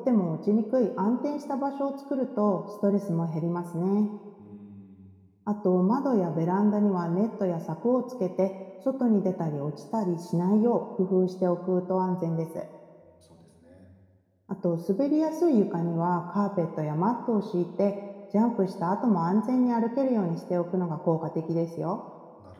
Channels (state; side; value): identical; both; correlation 1.00